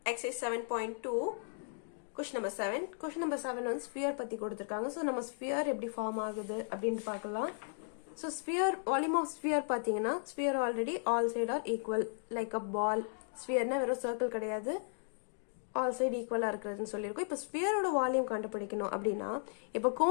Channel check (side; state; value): right; silent; digital silence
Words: exercise 7.2 question number 7. Question number 7 on sphere பத்தி கொடுத்திருக்காங்க. So நம்ம sphere எப்படி form ஆகுது அப்படினு பார்க்கலாம். So sphere volume of sphere பாத்தீங்கன்னா sphere already all side are equal like a ball. sphere னா வெறும் சர்க்கிள் கிடையாது. all side equal இருக்குதுன்னு சொல்லிருக்கோம். இப்போ ஸ்பியரோட வால்யூம் கண்டுபிடிக்கணும் அப்படின்னா இப்போ